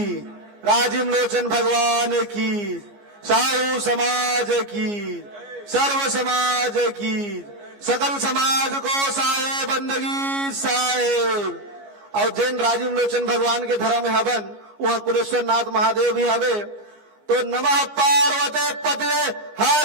राजिम लोचन भगवान की, साहू समाज की, सर्व समाज की, सकल समाज को साहे बंदगी साहेब। और जैन राजिम लोचन भगवान के धर्म में हवन, वहां कुलेश्वर नाथ महादेव भी हवे। तो नमः पार्वते पते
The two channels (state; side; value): late; left; 15 ms